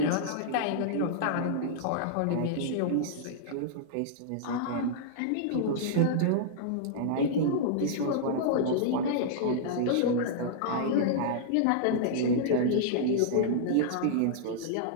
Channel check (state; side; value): different; both; correlation -0.02